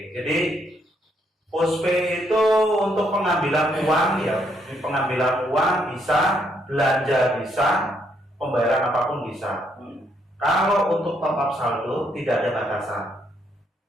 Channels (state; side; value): normal; both; correlation 0.73